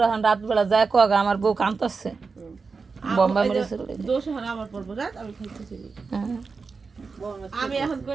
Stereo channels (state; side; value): quieter; left; 4.7 dB